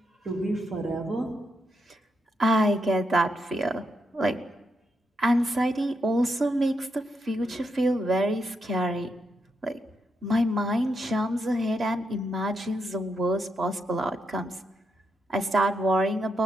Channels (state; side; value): normal; both; correlation 0.82